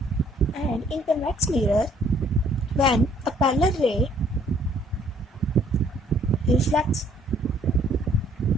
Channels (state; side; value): normal; both; correlation 0.62